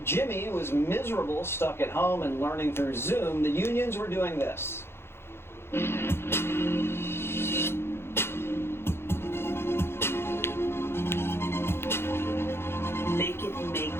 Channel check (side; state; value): right; late; 0.12 ms